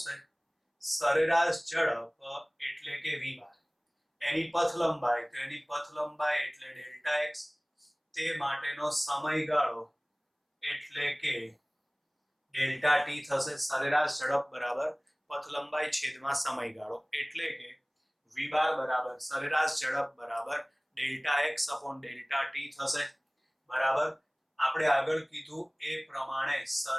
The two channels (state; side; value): identical; both; correlation 1.00